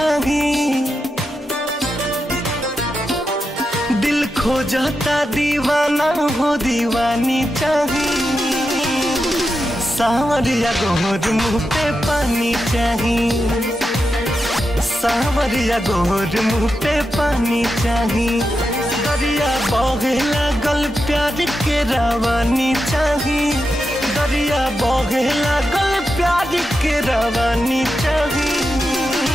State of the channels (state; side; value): normal; both; correlation 0.88